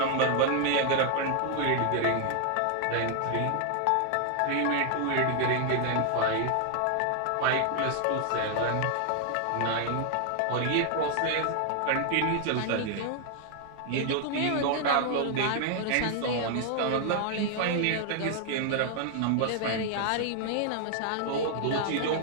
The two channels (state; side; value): different; both; correlation 0.00